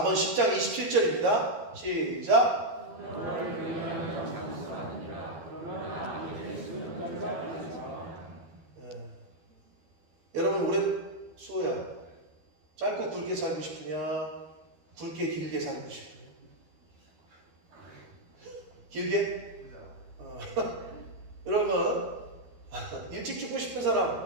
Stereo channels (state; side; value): late; left; 13 ms